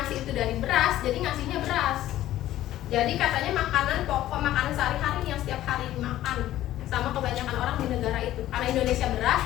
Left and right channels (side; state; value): right; quieter; 13.8 dB